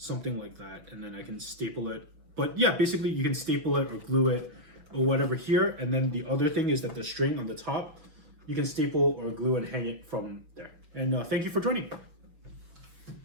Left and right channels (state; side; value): late; left; 6.3 ms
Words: like that, and then I can staple it. But yeah, basically you can staple it or glue it or whatever here. And then the other thing is that the string on the top, you can staple or glue and hang it from there. And thank you for joining.